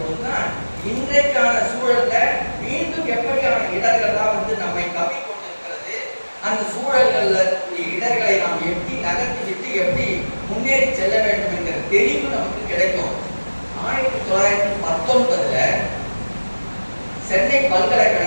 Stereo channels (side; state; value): both; inverted; correlation -1.00